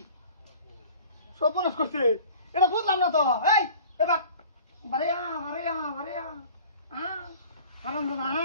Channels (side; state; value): both; inverted; correlation -0.45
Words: সপনস করছে এটা বুঝলাম না তো এই এবার বারেয়া হারাম দাদা